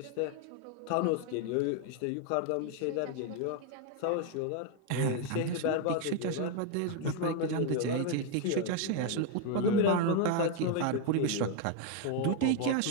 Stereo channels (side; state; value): both; different; correlation 0.01